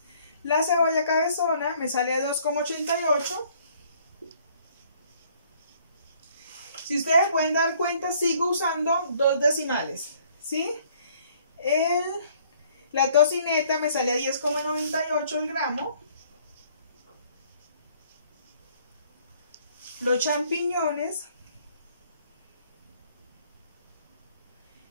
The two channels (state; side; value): inverted; both; correlation -0.61